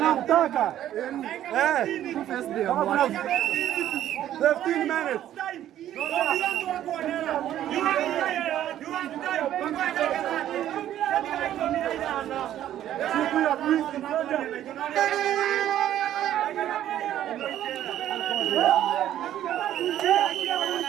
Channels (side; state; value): left; quieter; 11.9 dB